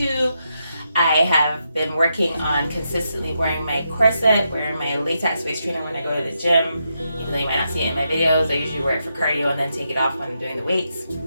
I have been working on consistently wearing my corset, wearing my latex waist trainer when I go to the gym. Even though you might not see it in my videos, I usually wear it for cardio and then take it off when I'm doing the weights.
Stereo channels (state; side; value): inverted; both; correlation -0.83